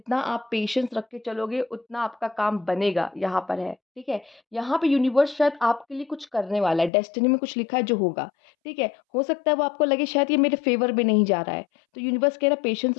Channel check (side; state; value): right; drops out; at 6.9 s